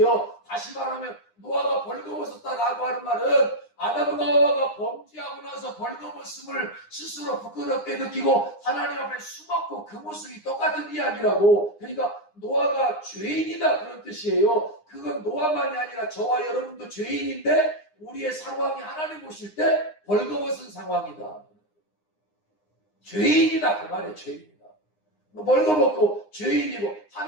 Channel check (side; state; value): right; late; 9.8 ms